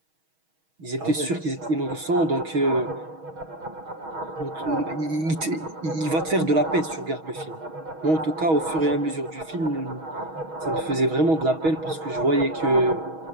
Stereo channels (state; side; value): late; left; 6.3 ms